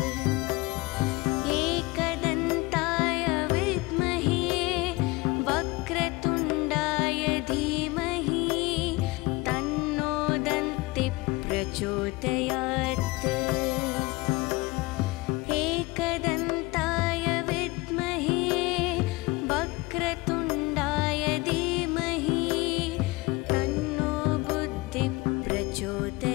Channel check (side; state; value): right; quieter; 23.0 dB